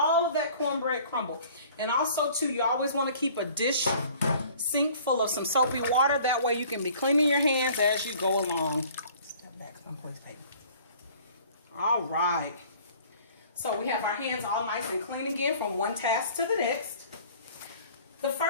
of that cornbread crumbled. And also, too, you always want to keep a dish sink full of some soapy water. That way you can be cleaning your hands as you go along. Step back, please, baby. All right. So we have our hands all nice and clean again from one task to the next. The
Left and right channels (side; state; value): both; inverted; correlation -0.51